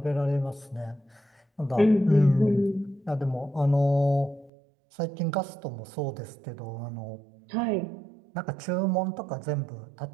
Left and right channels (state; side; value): drops out; left; at 4.5 s